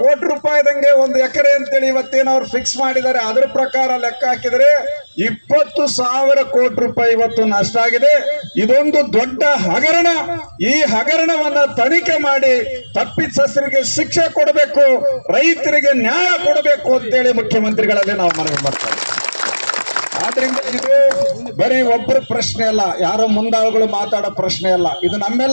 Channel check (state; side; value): inverted; both; correlation -1.00